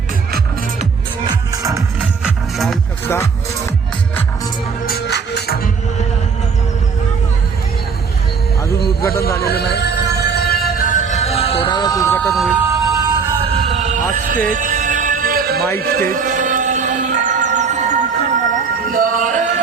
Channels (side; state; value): left; quieter; 5.6 dB